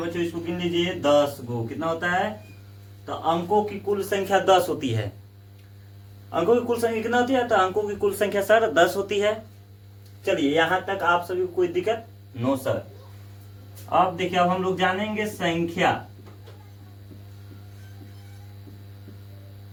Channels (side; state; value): both; identical; correlation 1.00